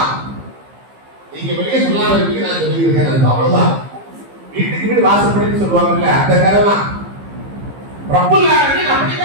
நீங்க வெளியே சொல்லாம இருக்கீங்க, நான் சொல்லியிருக்கேன். அவ்வளவுதான். வீட்டுக்கு வீடு வாசப்படின்னு சொல்லுவாங்கல்ல, அந்த கதை தான். ரப்புல் ஆலமீன்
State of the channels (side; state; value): left; late; 15 ms